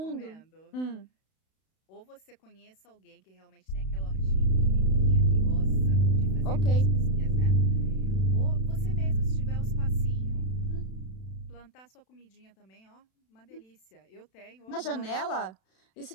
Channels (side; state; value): right; late; 32 ms